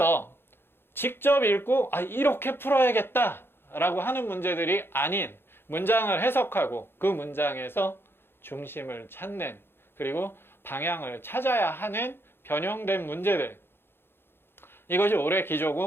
직접 읽고 이렇게 풀어야겠다 라고 하는 문제들이 아닌 문장을 해석하고 그 문장에서 중심을 찾는, 그리고 방향을 찾아야 하는 변형된 문제들, 이것이 올해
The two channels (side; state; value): right; late; 0.11 ms